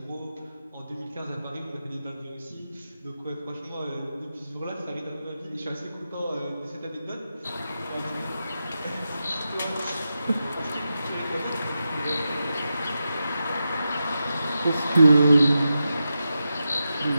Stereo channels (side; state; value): both; inverted; correlation -0.90